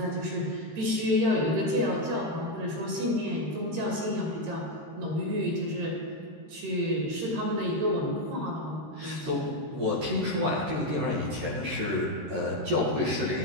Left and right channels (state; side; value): late; left; 13 ms